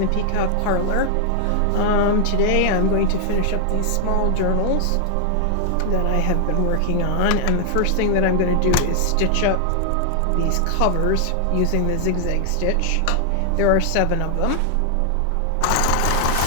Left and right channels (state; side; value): different; both; correlation 0.00